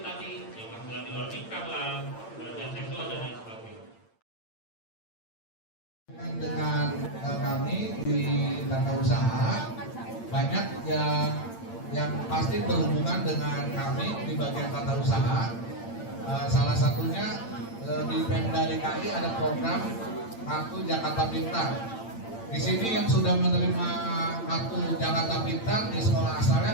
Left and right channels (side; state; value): right; late; 8.8 ms